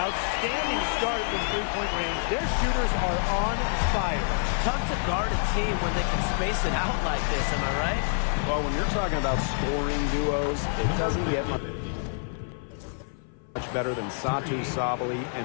start from three-point range. Their shooters are on fire. Tough to guard a team when they can space it out like this, am I right? Well, when you're talking about scoring duos, it doesn't get much better than Satu Sabali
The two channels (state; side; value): silent; right; 55 dB below the other